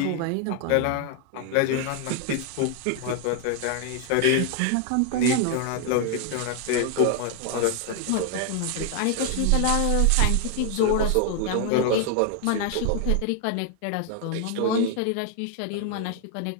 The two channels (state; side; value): different; both; correlation 0.00